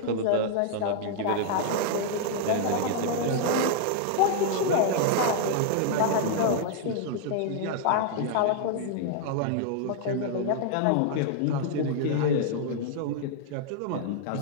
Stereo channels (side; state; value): both; different; correlation -0.01